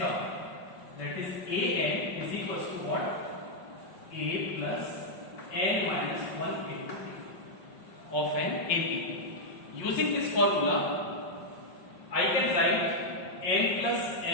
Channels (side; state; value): right; late; 5.5 ms